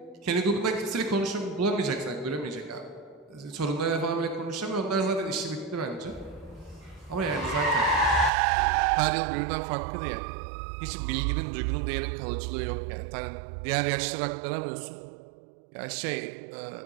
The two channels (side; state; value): left; drops out; at 8.3 s